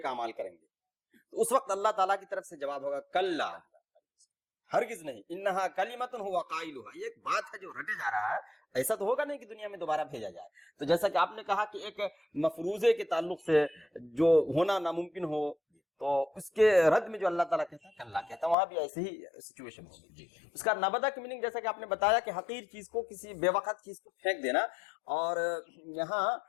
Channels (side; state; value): right; drops out; at 18.6 s